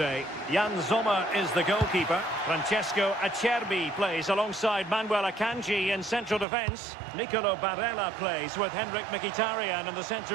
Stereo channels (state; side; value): drops out; left; at 6.5 s